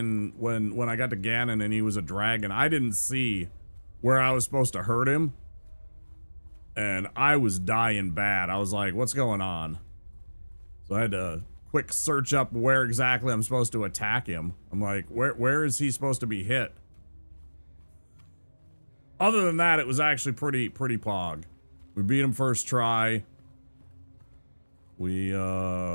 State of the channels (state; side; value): inverted; both; correlation -1.00